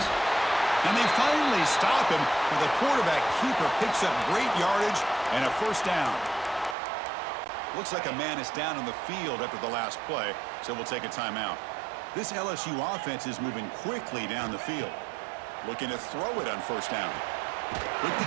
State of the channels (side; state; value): left; drops out; at 6.8 s